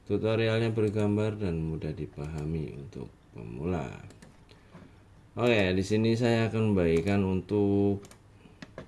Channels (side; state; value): both; identical; correlation 1.00